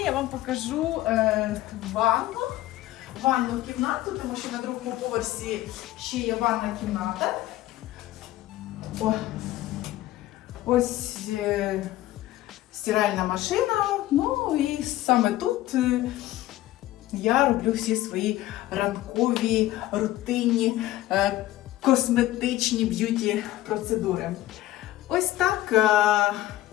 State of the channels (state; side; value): quieter; right; 15.3 dB